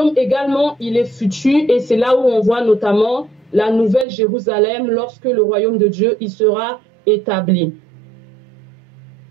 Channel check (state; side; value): drops out; left; at 4.0 s